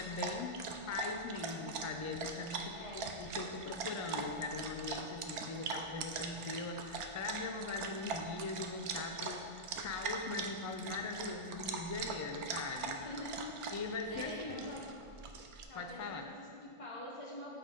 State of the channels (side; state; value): left; late; 1.4 ms